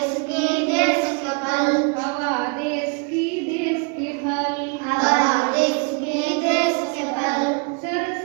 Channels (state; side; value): quieter; left; 34.8 dB